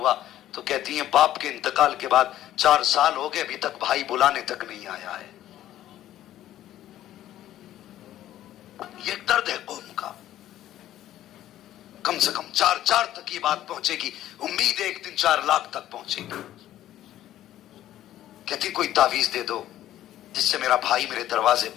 تو کہتی ہیں باپ کے انتقال کے بعد 4 سال ہو گئے ابھی تک بھائی بلانے تک نہیں آیا ہے۔ یہ ایک درد ہے قوم کا، کم سے کم 4 تک یہ بات پہنچے گی، امید ہے ایک دن 4 لاکھ تک پہنچے گی۔ کہتی کوئی تعویذ دے دو جس سے میرا بھائی میرے دروازے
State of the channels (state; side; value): quieter; right; 13.0 dB